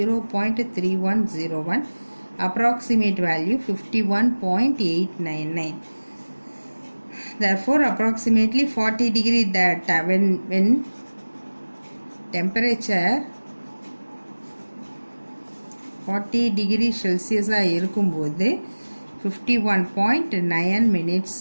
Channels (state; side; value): inverted; both; correlation -1.00